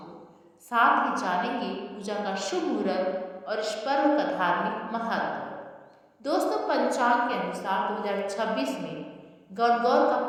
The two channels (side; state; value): both; identical; correlation 1.00